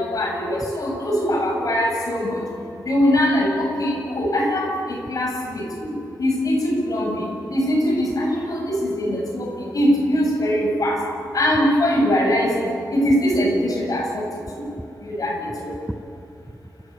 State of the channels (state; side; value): normal; both; correlation 0.77